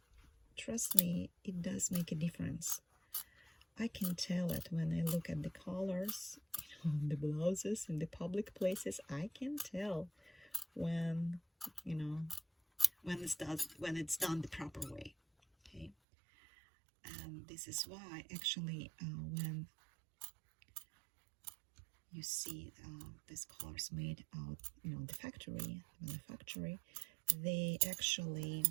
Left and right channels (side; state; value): left; drops out; at 16.0 s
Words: trust me, it does make a difference. I can tell it when I look at the colors, you know, the blouses in the public places. I can tell when, you know, when it's done the proper way. Okay, and this is why actually when you see these colors made out, you know, the manufactory, they actually